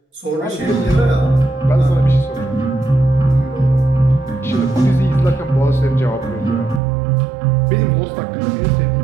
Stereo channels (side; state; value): left; drops out; at 6.8 s